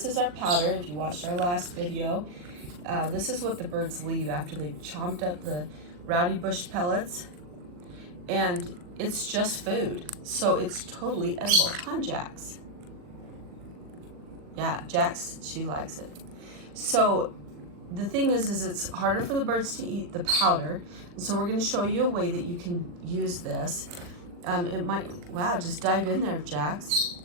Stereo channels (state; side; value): late; left; 40 ms